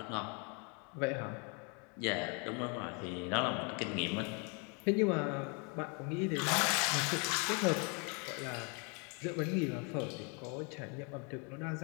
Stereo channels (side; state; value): right; quieter; 34.3 dB